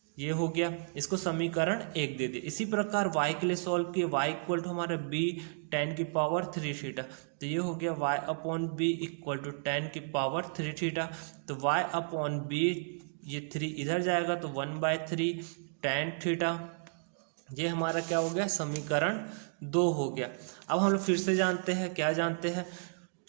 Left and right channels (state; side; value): silent; left; digital silence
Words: ये हो गया, इसको समीकरण 1 दे दिए। इसी प्रकार y के लिए सॉल्व किए, y इक्वल टू हमारा b टेन की पावर 3 थीटा, तो ये हो गया y upon b equal to tan की पावर 3 थीटा। तो y अपॉन बी, ये 3 इधर जाएगा तो 1/3 tan थीटा। ये हमारा क्या हो गया, समीकरण 2 हो गया। अब हम लोग फिर से जानते हैं, क्या जानते हैं,